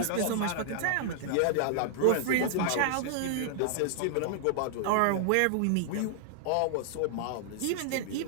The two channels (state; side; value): different; both; correlation 0.00